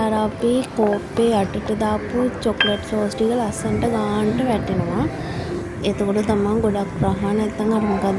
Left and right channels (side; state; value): both; identical; correlation 1.00